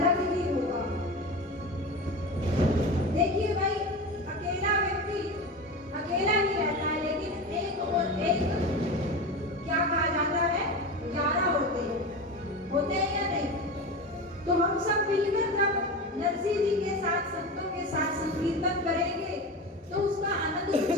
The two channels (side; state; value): both; normal; correlation 0.26